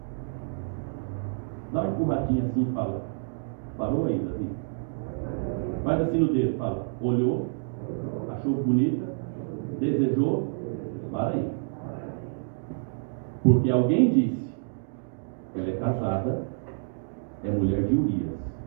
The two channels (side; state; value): left; silent; digital silence